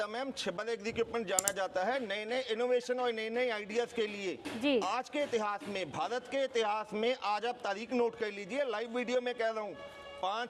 मैम, छिब्बर एग्जीक्यूटमेंट जाना जाता है नए नए इनोवेशन और नए नए आइडियाज के लिए जी। आज के इतिहास में, भारत के इतिहास में, आज आप तारीख नोट कर लीजिए, लाइव वीडियो में कह रहा हूँ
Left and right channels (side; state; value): both; identical; correlation 1.00